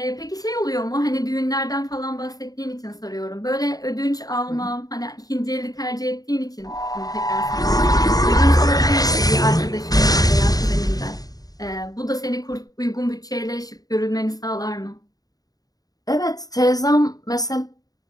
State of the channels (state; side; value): late; right; 0.18 ms